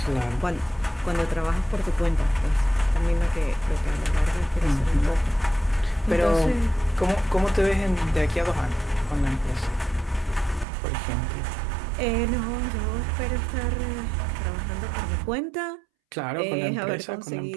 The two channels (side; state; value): left; drops out; at 10.7 s